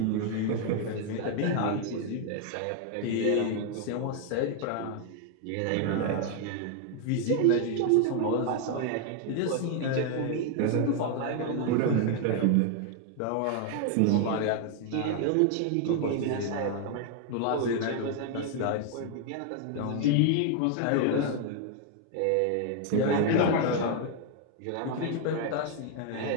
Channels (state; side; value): different; both; correlation 0.00